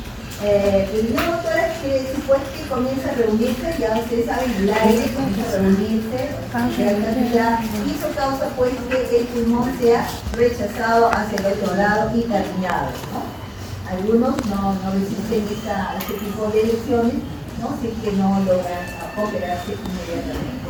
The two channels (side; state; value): both; identical; correlation 1.00